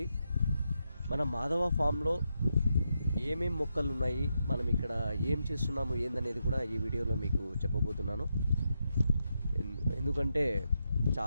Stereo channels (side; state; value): both; inverted; correlation -0.84